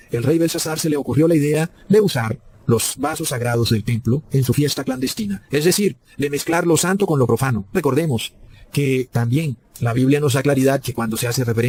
el rey Belsasar se le ocurrió la idea de usar los vasos sagrados del templo en su fiesta clandestina. Es decir, de mezclar lo santo con lo profano. Recordemos que también la Biblia nos da claridad que cuando se hace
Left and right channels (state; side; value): identical; both; correlation 1.00